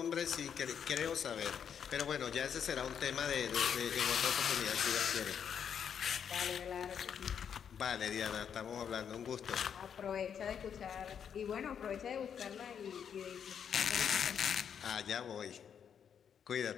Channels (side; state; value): right; quieter; 7.9 dB